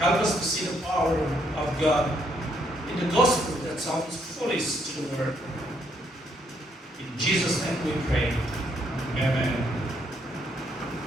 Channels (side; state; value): both; normal; correlation 0.72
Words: us to see the power of God in the gospel that sounds foolish to the world. In Jesus' name we pray. Amen.